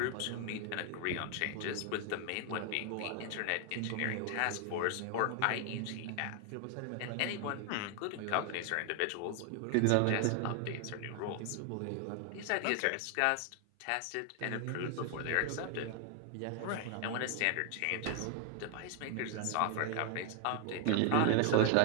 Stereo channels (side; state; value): both; different; correlation 0.00